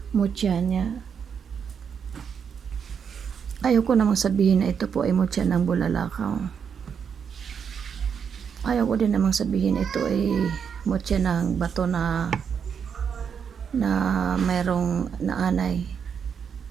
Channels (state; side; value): quieter; left; 7.1 dB